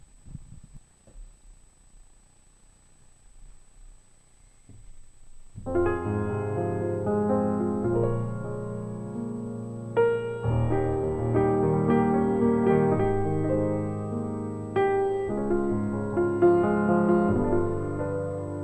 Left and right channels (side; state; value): both; identical; correlation 1.00